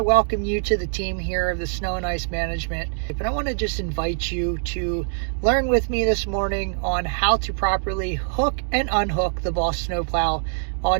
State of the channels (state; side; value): silent; left; digital silence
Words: welcome you to the team here of the Snow and Ice Management. And I want to just invite you to learn with me this morning on how to properly hook and unhook the BOSS Snow Plow on